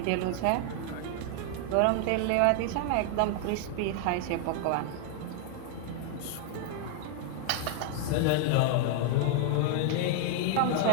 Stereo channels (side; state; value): both; different; correlation 0.00